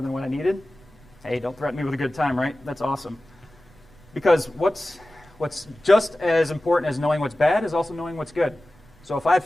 than what I needed. Hey, don't threaten me with a good time, right? That's awesome. Because what's just as important as knowing what's bad is also knowing what's good. So if I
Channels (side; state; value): right; noise; rumble, 27 dB below the sound